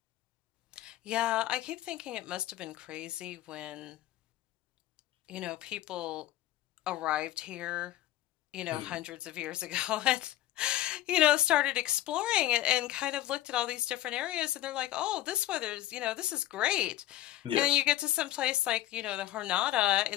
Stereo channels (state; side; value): quieter; right; 14.6 dB